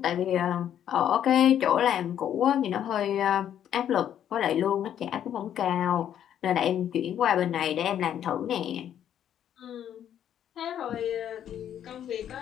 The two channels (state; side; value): quieter; right; 10.1 dB